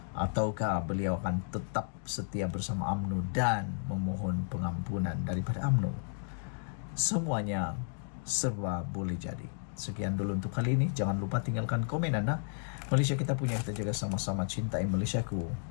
Ataukah beliau akan tetap setia bersama UMNO dan memohon pengampunan daripada UMNO? Semuanya serba boleh jadi. Sekian dulu untuk kali ini. Jangan lupa tinggalkan komen Anda. Malaysia kita punya, kita jaga sama-sama. Cintai Malaysiaku.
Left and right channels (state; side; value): silent; right; digital silence